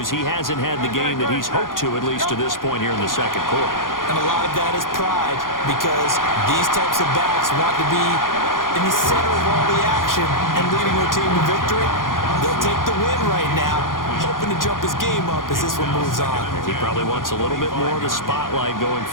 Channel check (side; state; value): right; late; 0.90 ms